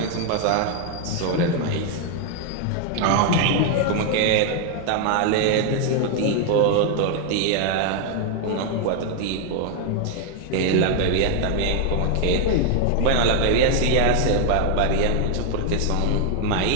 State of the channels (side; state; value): both; different; correlation 0.00